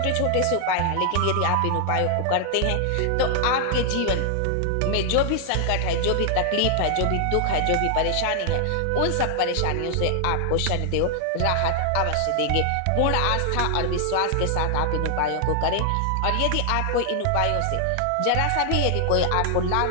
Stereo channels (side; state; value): both; different; correlation 0.00